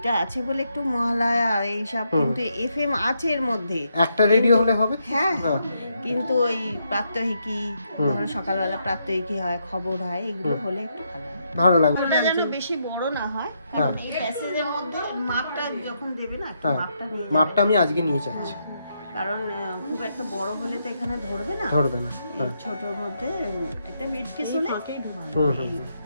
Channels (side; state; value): both; inverted; correlation -0.79